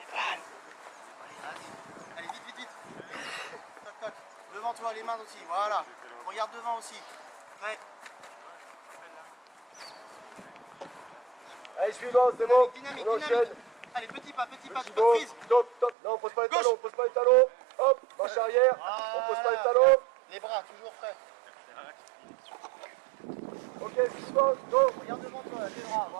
Allez, vite. Toc. Devant toi, les mains aussi, voilà. Regarde devant aussi. Prêt. Allez, suivant, c'est bon. Dynamique. On enchaîne. Allez, petit pas, tu peux prise. Top. Non, on pose pas les talons, Hop, marche arrière. On pose pas les talons. Les bras, toujours prêts. Ok, suivant, go. Regarde devant toi, les bras,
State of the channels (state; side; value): drops out; left; at 16.0 s